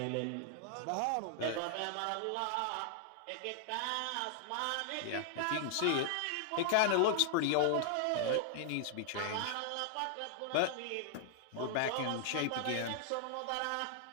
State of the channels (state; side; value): different; both; correlation -0.01